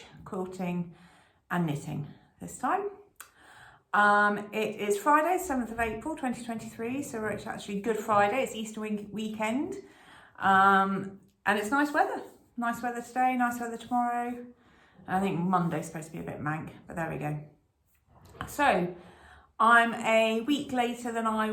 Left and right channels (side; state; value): both; identical; correlation 1.00